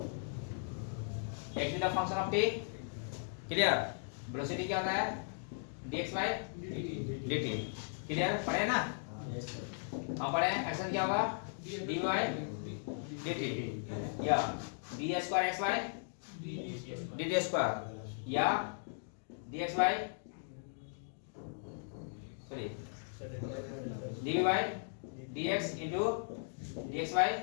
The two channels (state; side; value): silent; right; digital silence